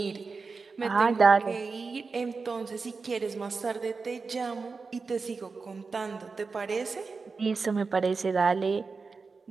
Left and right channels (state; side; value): quieter; left; 4.5 dB